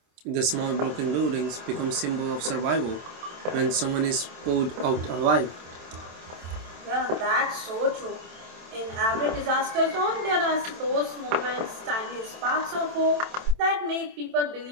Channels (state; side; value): late; left; 27 ms